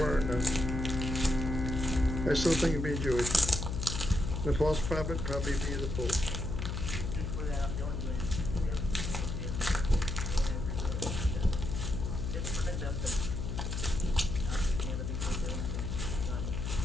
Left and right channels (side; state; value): left; noise; hum, 3 dB below the sound